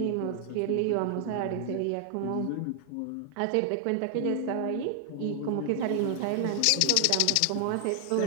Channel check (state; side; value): different; both; correlation 0.00